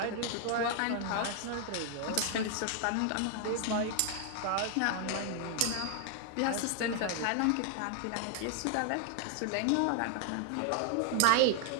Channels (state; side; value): different; both; correlation 0.00